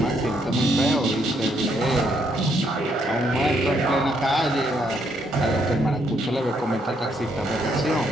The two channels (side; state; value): both; normal; correlation 0.73